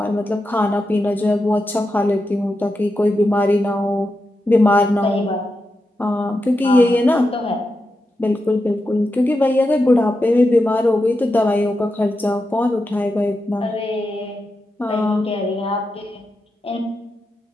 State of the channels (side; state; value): both; normal; correlation 0.88